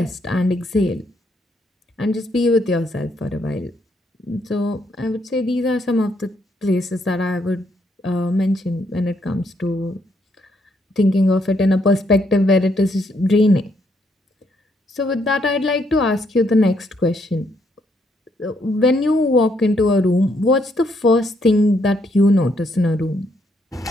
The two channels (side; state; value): both; normal; correlation 0.73